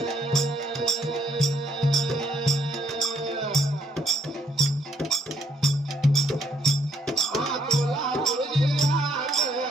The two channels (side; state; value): both; normal; correlation 0.69